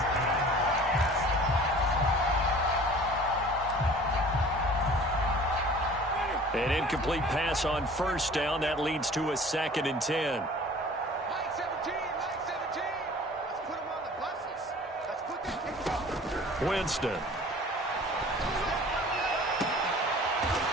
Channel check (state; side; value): normal; both; correlation 0.46